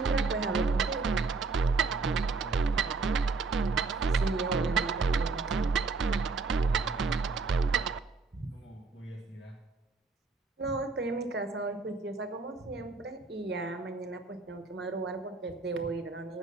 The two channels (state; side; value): quieter; left; 4.2 dB